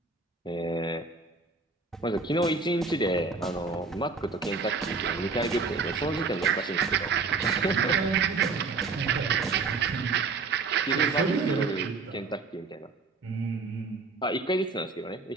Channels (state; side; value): quieter; left; 4.3 dB